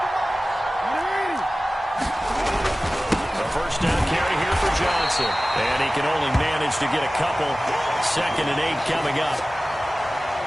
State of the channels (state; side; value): normal; both; correlation 0.97